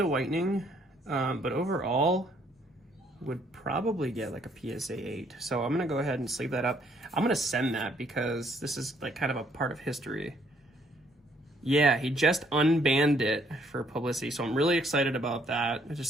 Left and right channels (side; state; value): both; normal; correlation 0.66